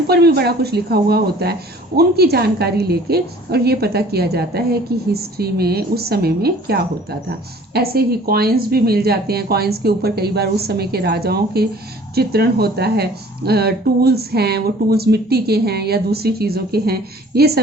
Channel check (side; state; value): both; normal; correlation 0.51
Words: भी बड़ा कुछ लिखा हुआ होता है, उनकी जानकारी लेके और ये पता किया जाता है कि हिस्ट्री में उस समय में क्या होता था। ऐसे ही कॉइन्स भी मिल जाते हैं, कॉइन्स के ऊपर कई बार उस समय के राजाओं के चित्रण होता है। टूल्स हैं, वो टूल्स मिट्टी के हैं या दूसरी चीज़ों के हैं, ये